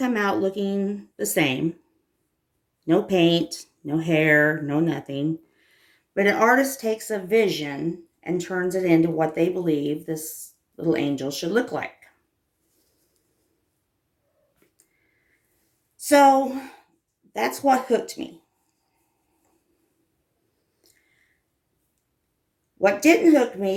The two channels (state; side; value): identical; both; correlation 1.00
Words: out looking the same. No paint, no hair, no nothing. But an artist takes a vision and turns it into what they believe this little angel should look like. So that's what hooked me. What didn't hook